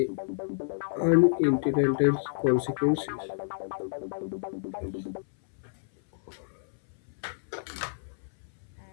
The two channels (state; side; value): silent; right; 58 dB below the other